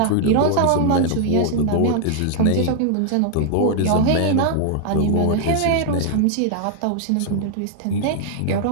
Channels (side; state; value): both; different; correlation 0.00